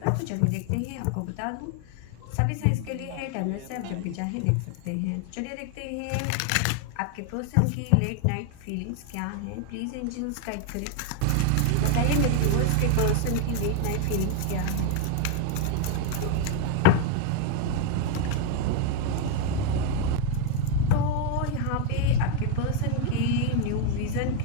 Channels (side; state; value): both; different; correlation 0.01